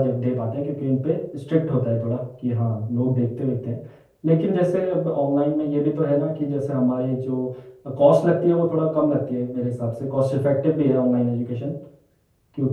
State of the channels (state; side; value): identical; both; correlation 1.00